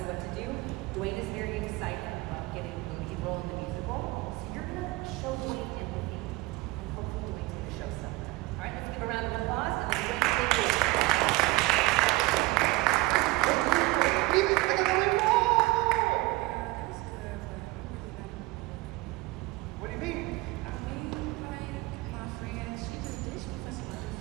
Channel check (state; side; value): quieter; left; 21.2 dB